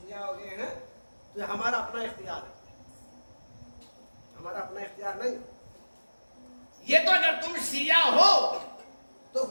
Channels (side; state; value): both; inverted; correlation -1.00